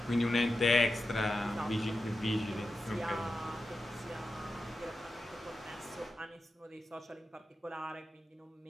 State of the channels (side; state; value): both; normal; correlation 0.91